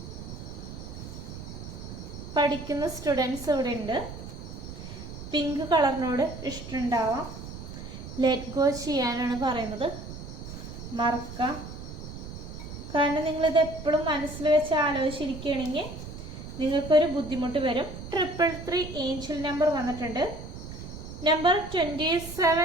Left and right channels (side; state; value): right; noise; rumble, 11 dB below the sound